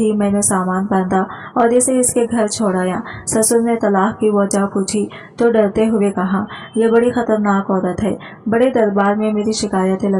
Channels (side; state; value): both; identical; correlation 1.00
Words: मैंने सामान बांधा और इसे इसके घर छोड़ाया। ससुर ने तलाक की वजह पूछी तो डरते हुए कहा, यह बड़ी खतरनाक औरत है, बड़े दरबार में मेरी शिकायतें